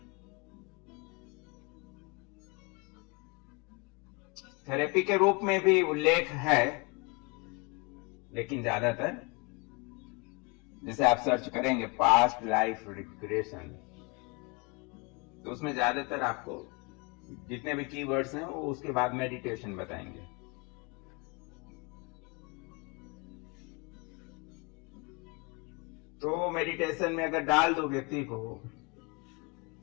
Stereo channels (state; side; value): quieter; right; 29.4 dB